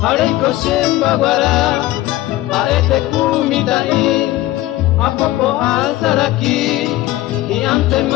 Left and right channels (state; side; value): quieter; right; 16.4 dB